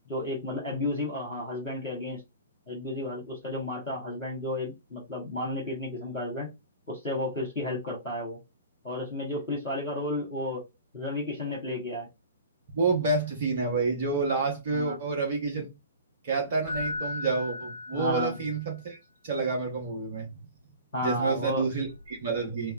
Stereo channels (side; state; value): both; inverted; correlation -0.40